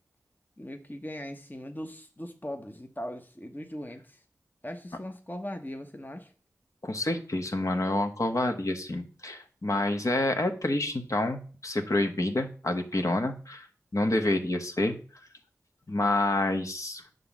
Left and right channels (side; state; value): both; normal; correlation 0.78